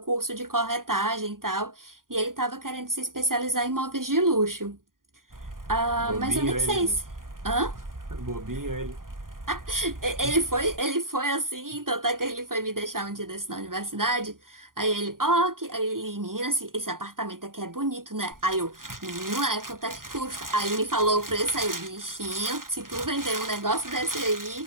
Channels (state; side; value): late; left; 0.91 ms